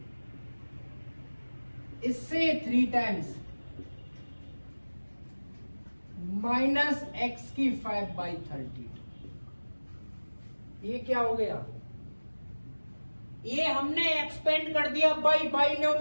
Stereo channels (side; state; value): both; inverted; correlation -1.00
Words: इससे 3 टाइम्स माइनस x की 5/30, ये क्या हो गया, ये हमने एक्सपेंड कर दिया बाय